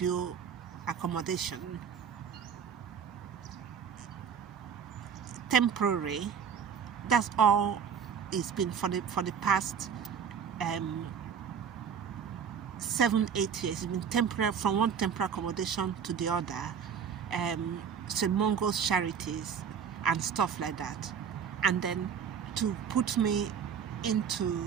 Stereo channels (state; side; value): quieter; left; 7.3 dB